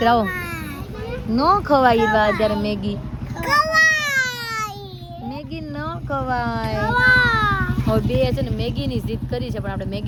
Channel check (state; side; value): identical; both; correlation 1.00